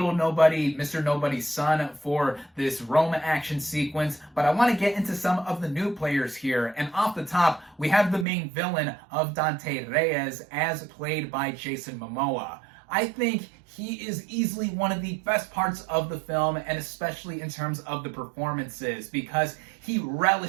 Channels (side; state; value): left; drops out; at 8.2 s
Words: Nobody, Mr. Nobody's son, for this Rome action sequence. But I want to get into some of the new players here. And off the top, we have the main villain of Dante Reyes, as played by Jason Momoa. I think he is easily one of the best parts of the film, and especially in terms of the performances, because he